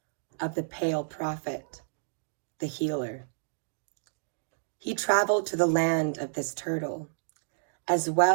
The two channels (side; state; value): left; silent; digital silence